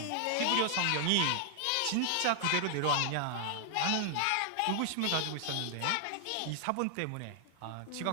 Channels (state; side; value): different; both; correlation 0.00